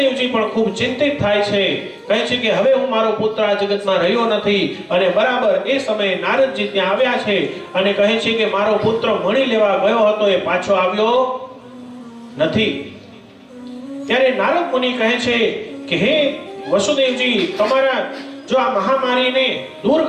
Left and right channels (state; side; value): identical; both; correlation 1.00